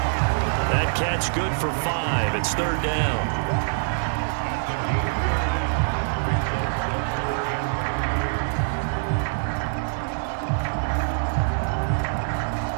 That catch good for 5. It's 3rd down.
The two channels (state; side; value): silent; left; digital silence